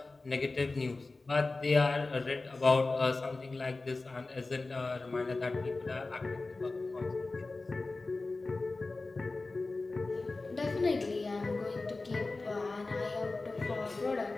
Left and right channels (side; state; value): right; quieter; 3.4 dB